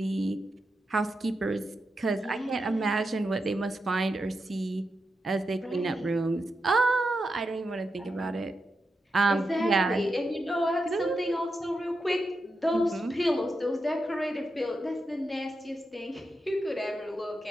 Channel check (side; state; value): both; normal; correlation 0.87